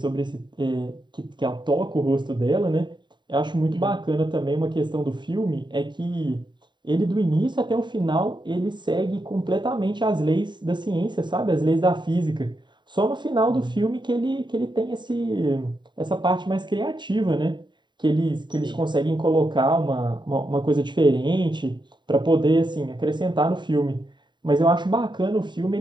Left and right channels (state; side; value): late; left; 0.22 ms